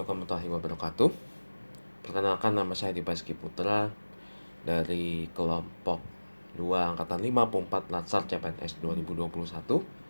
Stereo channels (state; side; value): inverted; both; correlation -1.00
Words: warahmatullahi wabarakatuh. Perkenalkan, nama saya Dibaski Putra dari kelompok 2 Angkatan 54 Latsar CPNS 2021.